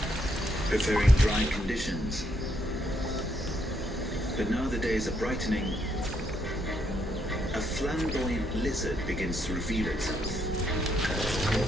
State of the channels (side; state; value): both; normal; correlation 0.75